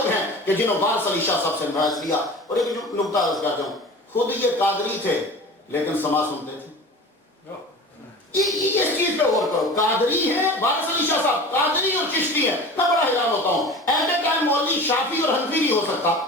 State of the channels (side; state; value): both; normal; correlation 0.37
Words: ہیں کہ جنہوں وارث علی شاہ صاحب سے فیض لیا۔ اور ایک جو نقطہ عرض کرتا ہوں، خود یہ قادری تھے لیکن سما سنتے تھے۔ اس چیز پہ غور کرو، قادری ہیں وارث علی شاہ صاحب، قادری اور چشتی ہیں۔ میں بڑا حیران ہوتا ہوں، ایٹ اے ٹائم مولوی شافعی اور حنفی نہیں ہو سکتا،